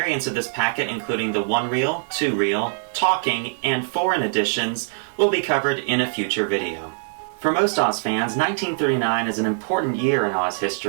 of this packet, including the 1-reel, 2-reel, talking, and foreign editions, will be covered in a future video. For most Oz fans, 1939 is an important year in Oz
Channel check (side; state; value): left; silent; 64 dB below the other